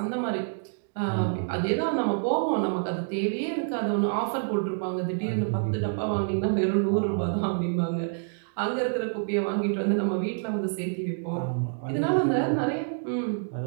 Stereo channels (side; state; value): left; silent; digital silence